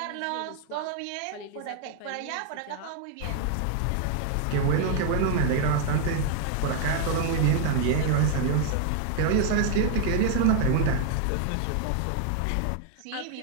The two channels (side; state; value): both; different; correlation 0.00